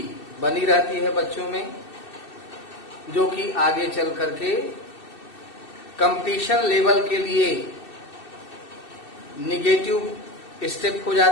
बनी रहती है बच्चों में, जो कि आगे चल करके कंपटीशन लेवल के लिए निगेटिव स्टेप हो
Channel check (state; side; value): late; right; 2.6 ms